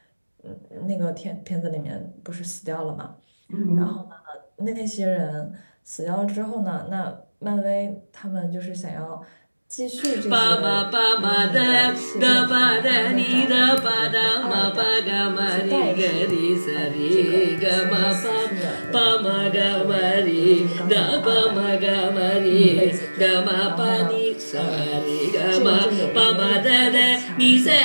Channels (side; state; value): both; inverted; correlation -1.00